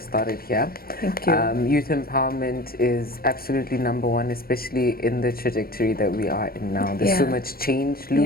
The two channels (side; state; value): right; late; 0.43 ms